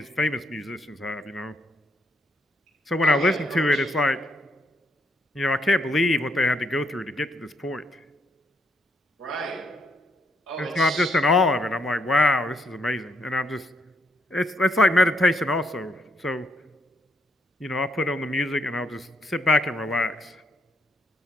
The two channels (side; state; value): both; normal; correlation 0.74